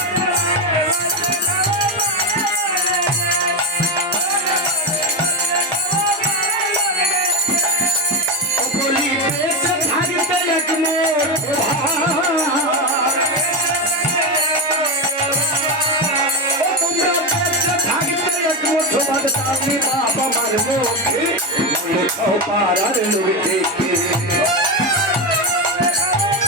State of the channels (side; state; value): both; normal; correlation 0.13